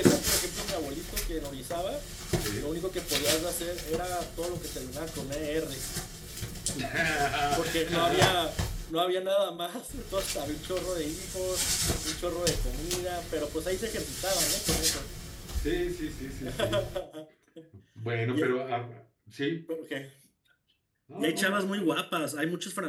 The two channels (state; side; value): identical; both; correlation 1.00